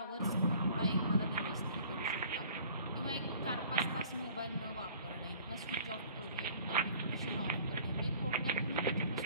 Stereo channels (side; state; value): both; inverted; correlation -0.51